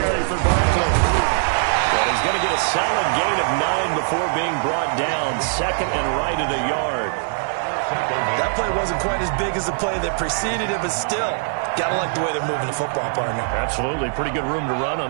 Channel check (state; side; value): silent; left; 57 dB below the other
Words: for Barkley. But he's going to get a solid gain of 9 before being brought down. Second and right at a yard. That play wasn't quite as big as the play that preceded it, but still, got to like the way they're moving the football, partner. Absolutely. Pretty good room to run on